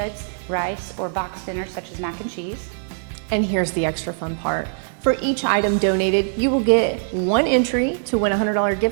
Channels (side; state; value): left; silent; digital silence